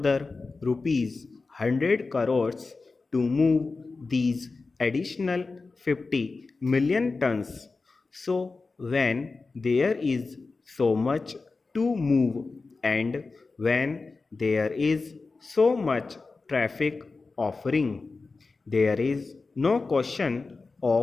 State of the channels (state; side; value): quieter; right; 3.9 dB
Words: rupees 100 crores to move these additional 50 million tons. So when there is so much to move and when there is so much traffic offering, there is no question